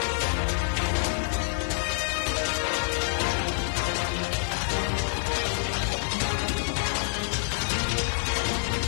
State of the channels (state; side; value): silent; right; 60 dB below the other